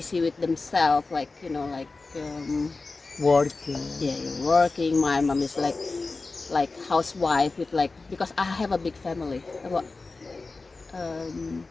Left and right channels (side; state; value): right; quieter; 3.7 dB